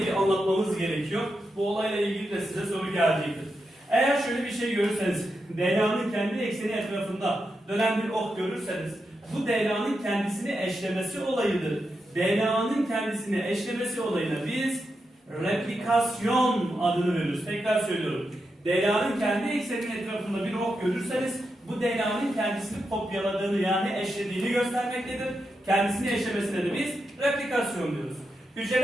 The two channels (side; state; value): both; normal; correlation 0.86